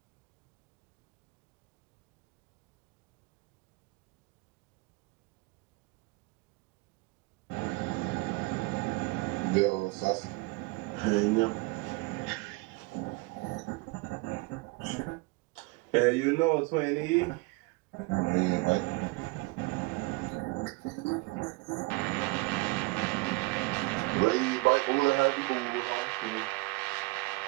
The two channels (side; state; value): left; quieter; 25.6 dB